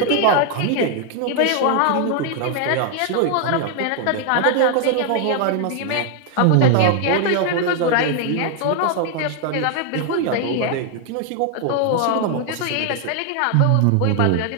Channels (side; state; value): both; different; correlation 0.00